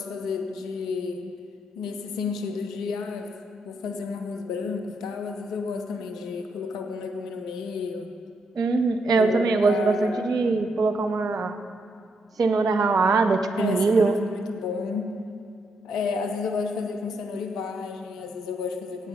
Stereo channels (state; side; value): normal; both; correlation 0.78